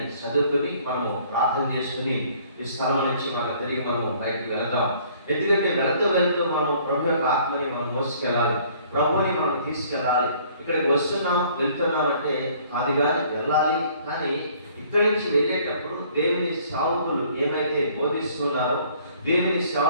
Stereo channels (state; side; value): inverted; both; correlation -0.58